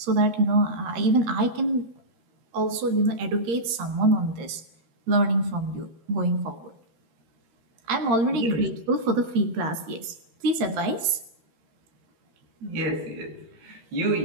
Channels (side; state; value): left; late; 13 ms